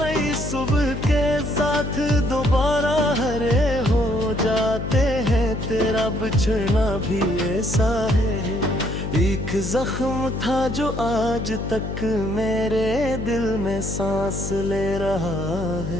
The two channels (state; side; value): noise; left; hum, 5 dB below the sound